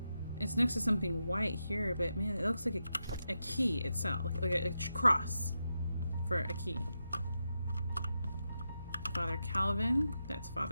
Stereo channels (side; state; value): both; inverted; correlation -0.87